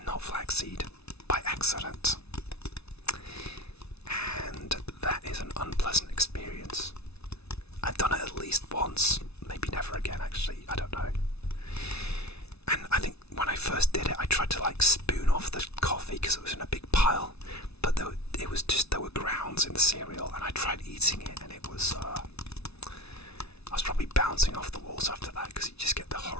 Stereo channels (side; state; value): right; late; 0.80 ms